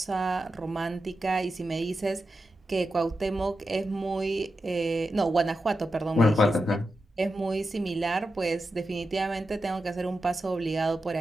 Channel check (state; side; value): normal; both; correlation 0.90